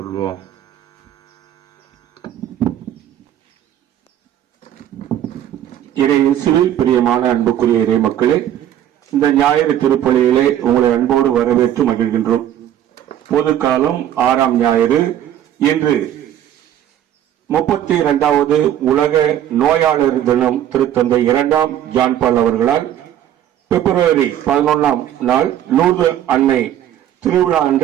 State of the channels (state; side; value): quieter; left; 11.2 dB